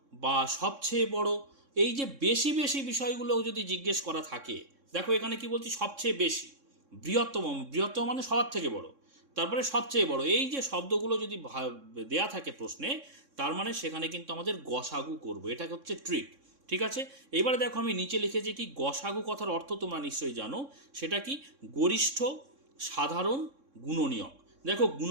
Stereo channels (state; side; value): late; left; 3.6 ms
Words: বা সবচেয়ে বড়, এই যে বেশি বেশি বিষয়গুলো যদি জিজ্ঞেস করা থাকে, দেখো এখানে কি বলছি, সবচেয়ে বেশি, বৃহত্তম, বৃহত্তম মানে সবার থেকে বড়, তারপরে সবচেয়ে বড়, এই যে শব্দগুলো যদি দেয়া থাকে প্রশ্নে, তার মানে সেখানে কিন্তু আমাদের গসাগু করব, এটা হচ্ছে ট্রিক। ঠিক আছে, এবারে দেখো আমি নিচে লিখেছি কি, গসাগু কথার অর্থ তোমরা নিশ্চয়ই জানো, সেটা কি, গরিষ্ঠ, সাধারণ, গুণনীয়ক। দেখো